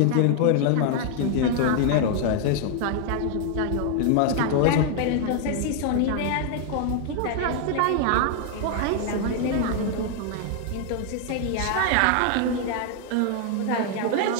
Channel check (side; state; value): both; different; correlation 0.00